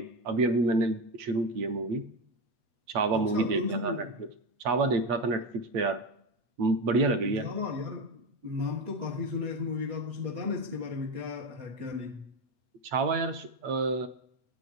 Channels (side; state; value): left; late; 8.3 ms